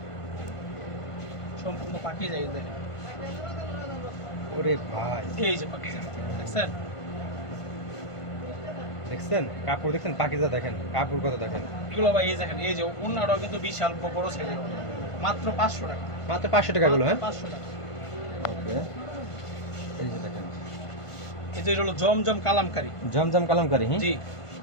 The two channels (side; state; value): right; late; 1.5 ms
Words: সম্পূর্ণ পাকিজা। এই দেখেন, ওরে ভাই, এই যে পাকিজা দেখছেন? দেখছেন কাপড়, দেখছেন পাকিজা, দেখেন কাপড় কত দেখেন। এগুলো ভাই এই দেখেন, এই যে ওন্নাটাও কিন্তু বিশাল বড় সাইজের, মাত্র 500 টাকা। মাত্র 500 টাকা গুলো? হ্যাঁ, 500 টাকা। ওকে, এই যে দেখেন, এই যে এটা হলো জমজম কালামকারী। জমজম কালামকারী? হ্যাঁ জি